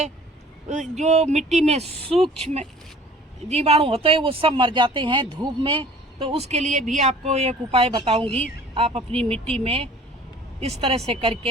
जो मिट्टी में सूक्ष्म जीवाणु होते हैं वो सब मर जाते हैं धूप में। तो उसके लिए भी आपको एक उपाय बताऊंगी। आप अपनी मिट्टी में इस तरह से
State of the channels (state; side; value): normal; both; correlation 0.49